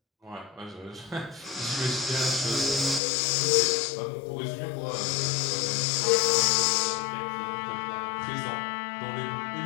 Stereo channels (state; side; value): drops out; right; at 3.0 s